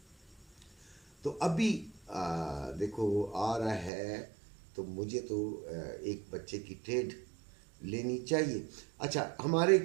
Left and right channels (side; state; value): left; drops out; at 3.9 s